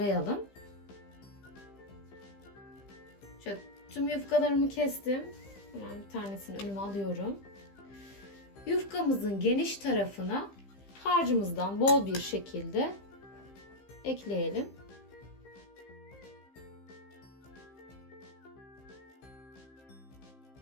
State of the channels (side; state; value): right; late; 15 ms